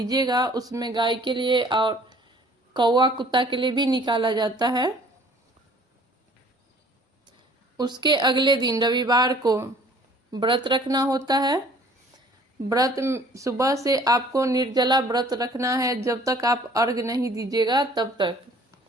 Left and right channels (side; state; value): both; normal; correlation 0.54